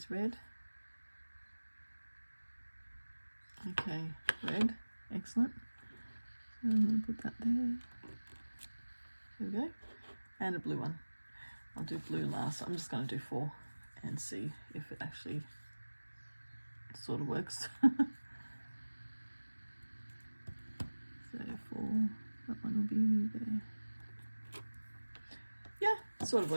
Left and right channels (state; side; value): inverted; both; correlation -1.00